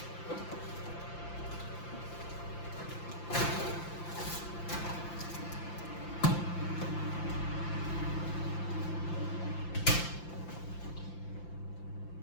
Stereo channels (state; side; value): late; right; 5.8 ms